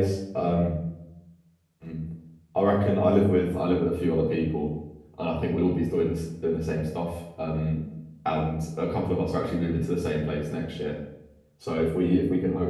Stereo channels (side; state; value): both; identical; correlation 1.00